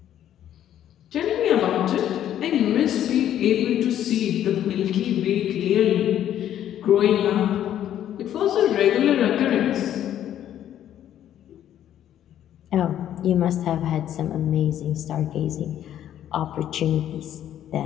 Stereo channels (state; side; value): quieter; right; 11.0 dB